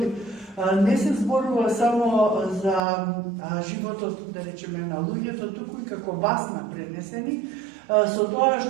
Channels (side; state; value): left; drops out; at 2.8 s